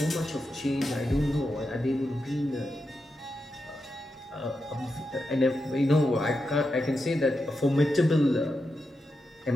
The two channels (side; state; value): both; normal; correlation 0.87